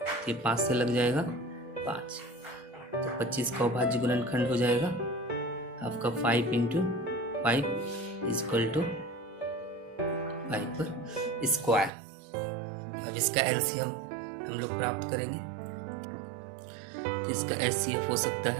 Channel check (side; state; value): left; drops out; at 11.9 s